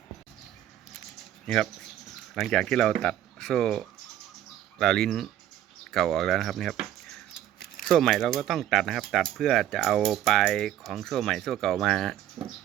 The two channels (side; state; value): left; quieter; 11.9 dB